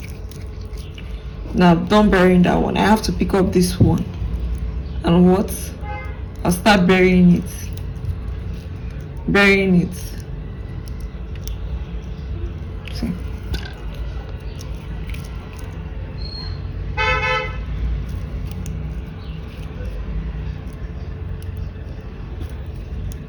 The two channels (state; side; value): identical; both; correlation 1.00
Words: now don't bury that one, I have to pick up this one, and what, I'll start burying it. cutting.